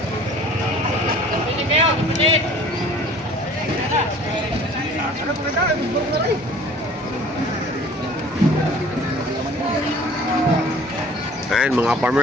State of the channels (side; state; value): both; normal; correlation 0.49